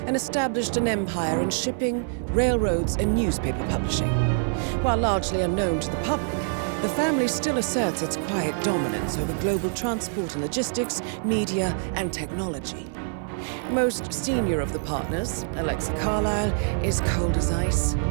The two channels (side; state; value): left; silent; digital silence